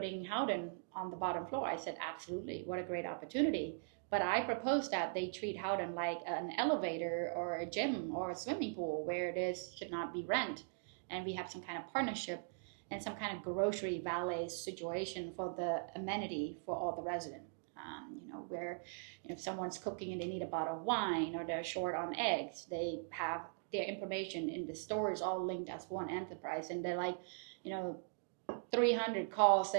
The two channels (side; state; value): left; silent; digital silence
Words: Howden on the bottom floor. I said, absolutely, what a great opportunity. But I proposed that they treat Howden like an elevator or a gym or a swimming pool where this should not be rent. And we have some kind of partnership and some kind of grocery valet situation for the amenity for all the residents. Where if someone's cooking and they need a bottle of wine or they're short on eggs, they have their information in the stores all linked as one enterprise, and they're like 300 calls